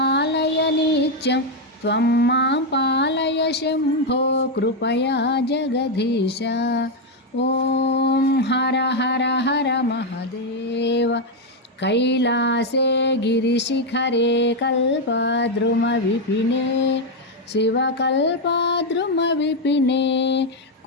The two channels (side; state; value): both; normal; correlation 0.03